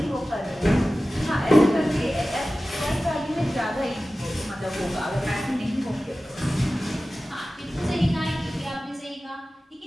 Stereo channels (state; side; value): normal; both; correlation 0.95